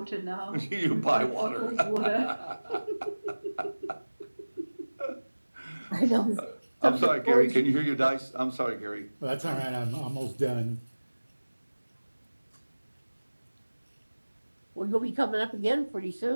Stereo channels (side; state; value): both; inverted; correlation -1.00